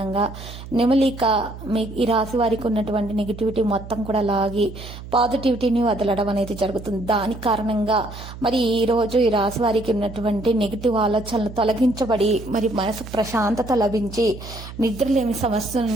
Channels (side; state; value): right; noise; hum, 13 dB below the sound